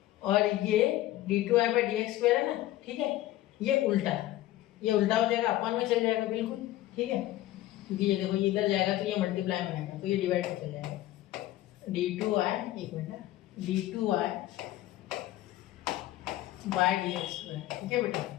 और ये d2y बाई dx स्क्वायर है ना, ठीक है, ये उल्टा हो जाएगा, अपन में चल जाएगा बिल्कुल, ठीक है, क्योंकि ये देखो ये इधर जाएगा तो ये मल्टीप्लाई में आएगा, तो ये डिवाइड में चल जाएगा, d2y, एक minute, d2y by dx square, ठीक है बेटा।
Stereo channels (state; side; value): quieter; right; 15.2 dB